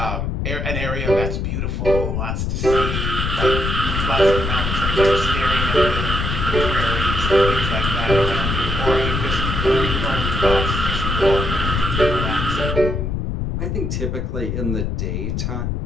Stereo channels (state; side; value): noise; left; rumble, 1 dB below the sound